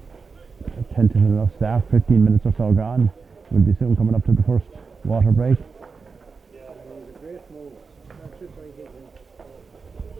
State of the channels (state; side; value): quieter; left; 4.9 dB